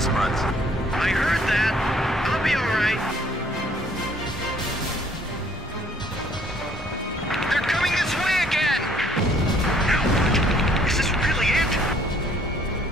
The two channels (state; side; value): normal; both; correlation 0.61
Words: month. I heard that. I'll be alright. They're coming this way again! Now, is this really it?